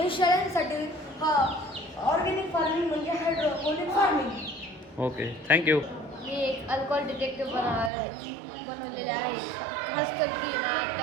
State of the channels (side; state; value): left; drops out; at 7.9 s